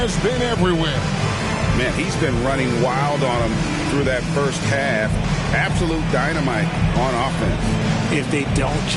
been everywhere. Man, he's been running wild on him through that first half. Absolute dynamite on offense. If they don't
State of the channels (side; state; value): both; identical; correlation 1.00